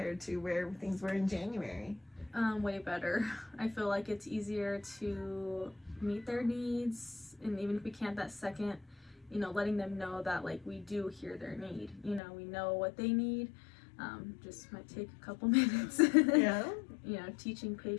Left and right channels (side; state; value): right; drops out; at 12.2 s